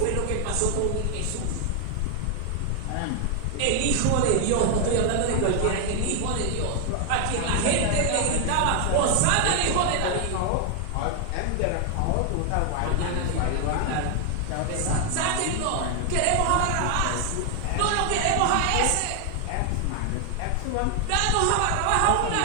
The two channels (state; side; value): different; both; correlation 0.00